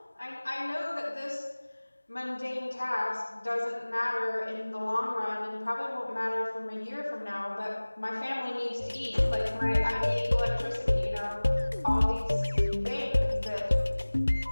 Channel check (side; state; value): both; inverted; correlation -1.00